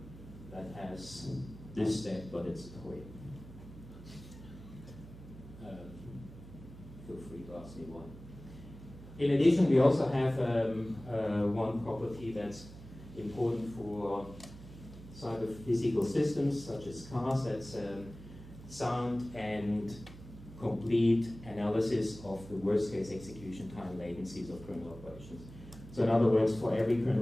that has this step, but it's a toy. Feel free to ask me one. In addition, we also have one property that's important for cyber-physical systems, such as cars. That's sound and complete analysis of the worst-case execution time latencies of kernel operations. So in other words, for every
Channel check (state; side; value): noise; right; hum, 16 dB below the sound